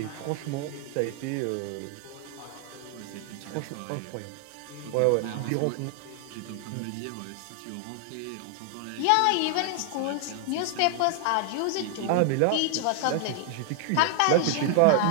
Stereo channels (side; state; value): both; different; correlation 0.00